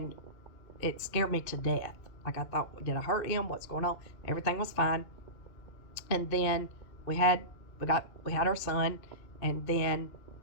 it scared me to death. Like, I thought, did I hurt him? What's going on? Everything was fine. And then we had our son, and then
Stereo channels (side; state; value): right; late; 2.5 ms